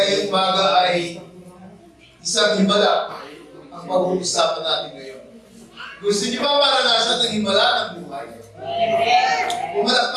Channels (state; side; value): identical; both; correlation 1.00